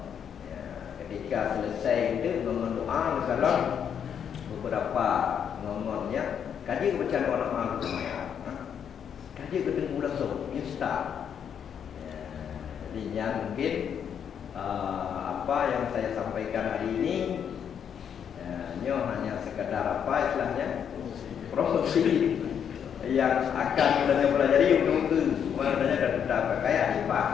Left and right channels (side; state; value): right; quieter; 8.1 dB